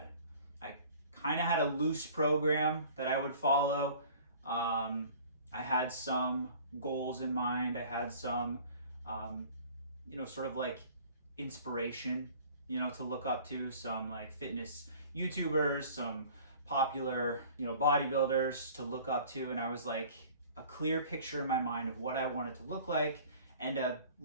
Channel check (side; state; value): both; inverted; correlation -0.48